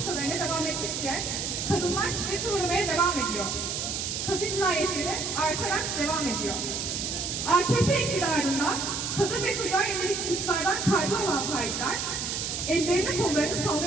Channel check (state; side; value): noise; right; hiss, 3 dB below the sound